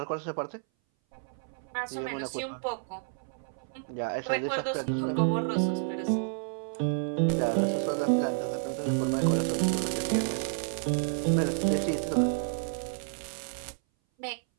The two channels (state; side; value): silent; left; 57 dB below the other